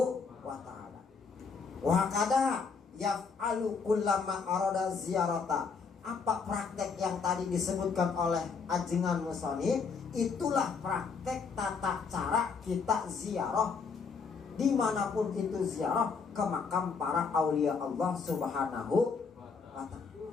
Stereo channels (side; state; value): right; quieter; 5.3 dB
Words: wa ta'ala. Wa kada yaf'alu kullama arada ziyarata. Apa praktek yang tadi disebutkan oleh ajengan musonif? Itulah praktek tata cara kita ziarah dimanapun itu, ziarah ke makam para aulia Allah Subhanahu wa ta'ala.